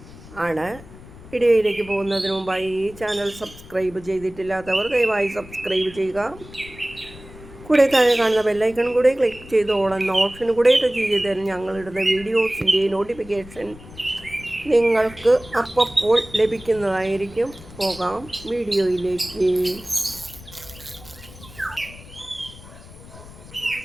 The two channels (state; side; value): noise; left; rumble, 18 dB below the sound